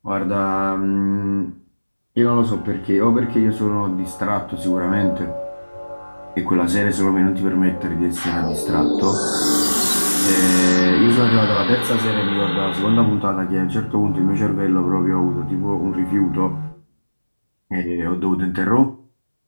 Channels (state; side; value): inverted; both; correlation -1.00